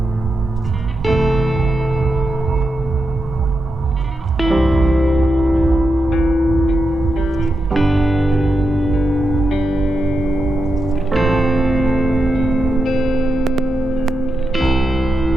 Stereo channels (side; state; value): both; normal; correlation 0.87